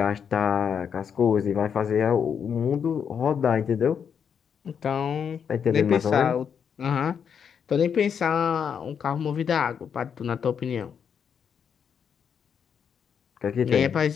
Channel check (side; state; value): right; quieter; 7.4 dB